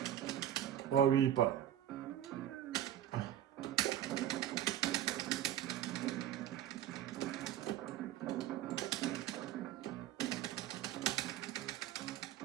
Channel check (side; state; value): left; quieter; 11.5 dB